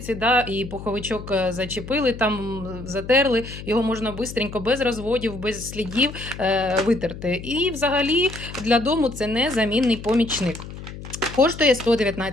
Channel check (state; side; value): noise; left; hum, 12 dB below the sound